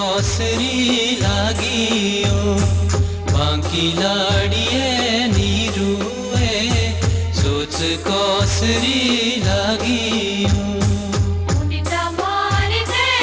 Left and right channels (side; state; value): both; identical; correlation 1.00